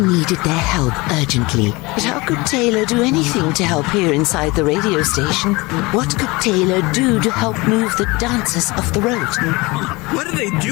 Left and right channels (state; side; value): quieter; right; 23.8 dB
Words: needed their help urgently. But how could Taylor do anything to help here inside the radio station? What could Taylor do to help move the dancers off the road? What are they